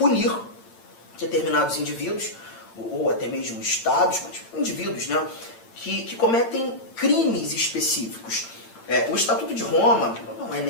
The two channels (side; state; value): right; late; 8.8 ms